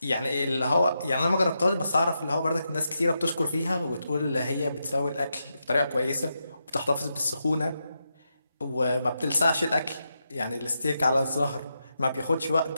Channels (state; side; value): inverted; both; correlation -0.85